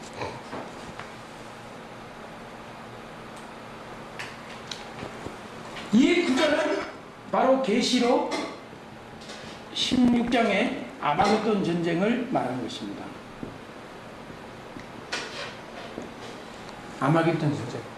이 구절은 바로 계시록 16장의 아마겟돈 전쟁을 말하는 것입니다. 아마겟돈 전쟁.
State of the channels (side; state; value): both; identical; correlation 1.00